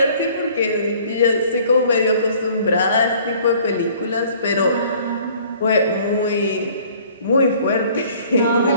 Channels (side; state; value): both; inverted; correlation -0.55